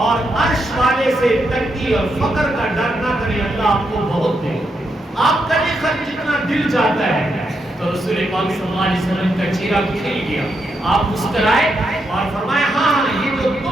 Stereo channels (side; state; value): both; normal; correlation 0.82